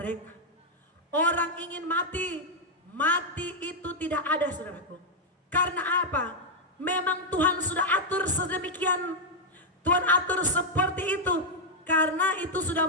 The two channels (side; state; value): both; normal; correlation -0.02